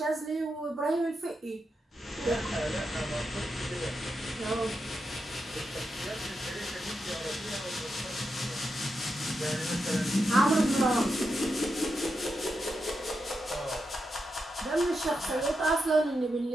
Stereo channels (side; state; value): both; normal; correlation 0.86